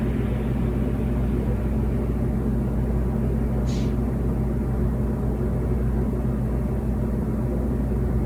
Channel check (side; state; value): both; identical; correlation 1.00